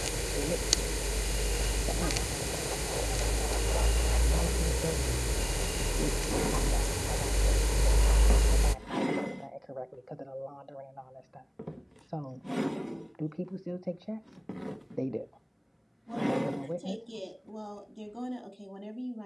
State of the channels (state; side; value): identical; both; correlation 1.00